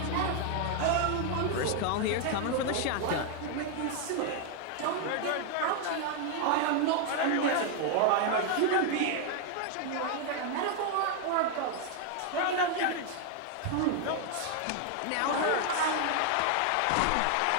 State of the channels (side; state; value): both; different; correlation 0.00